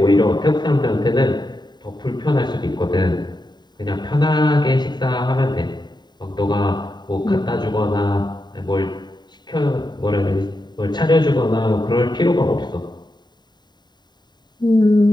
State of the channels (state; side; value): late; right; 0.21 ms